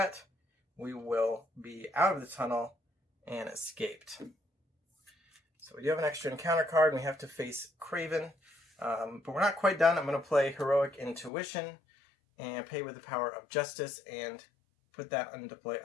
we will be out of the tunnel and escaped. So we do have an extra encounter card, and we have to face Kraven. But we're not quite done. I'm going to play Heroic Intuition and pay with the power of Justice and put that into play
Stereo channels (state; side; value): drops out; right; at 11.3 s